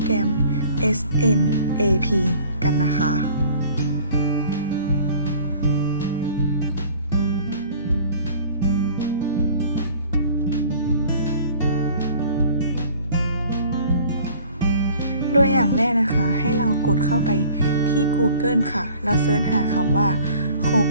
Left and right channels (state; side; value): inverted; both; correlation -0.49